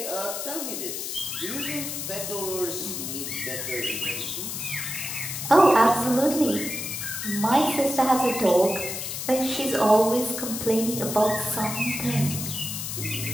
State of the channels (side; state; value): left; noise; hiss, 5 dB below the sound